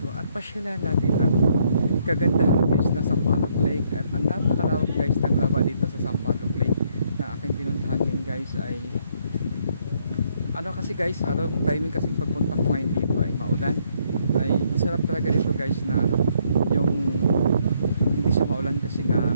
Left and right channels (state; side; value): inverted; both; correlation -0.70